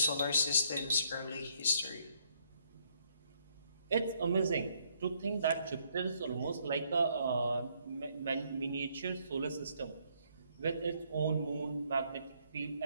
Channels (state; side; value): inverted; both; correlation -0.70